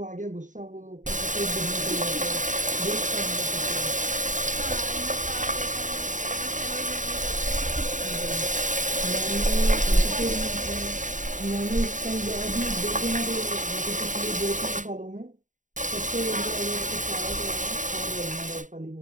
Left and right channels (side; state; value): left; late; 0.37 ms